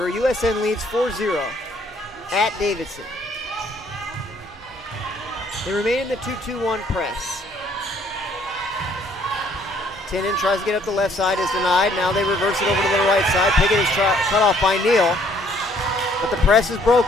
USN leads 4-0 at Davidson. They remain in the 2-2-1 press. Tinnin tries to get up the left side, is denied. Now they reverse it over to the right side. Piggott is cut off by Neal, but the press is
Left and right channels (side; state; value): both; normal; correlation 0.63